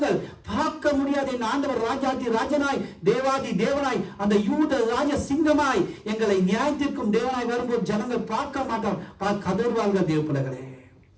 பார்க்க முடியாது என் ஆண்டவர் ராஜாதி ராஜனாய் தேவாதி தேவனாய் அந்த யூத ராஜ சிங்கமாய் எங்களை நியாயத்திற்கும் தேவனாய் வரும்போது ஜனங்கள் பார்க்க மாட்டார், கதறுவார்கள் தேவ பிள்ளைகளே.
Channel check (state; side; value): identical; both; correlation 1.00